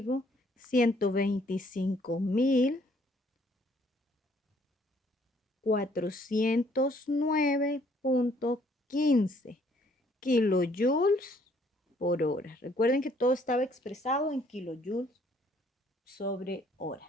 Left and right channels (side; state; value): both; normal; correlation 0.64